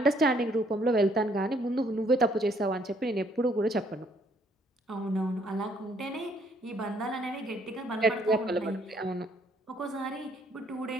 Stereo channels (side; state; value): both; normal; correlation 0.66